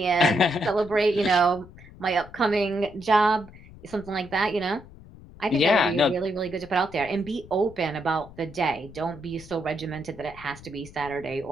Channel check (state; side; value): noise; left; rumble, 19 dB below the sound